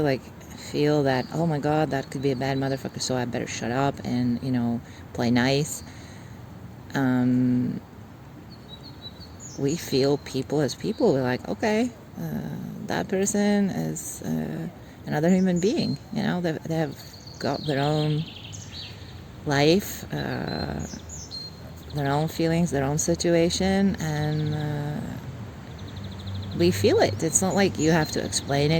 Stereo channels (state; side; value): identical; both; correlation 1.00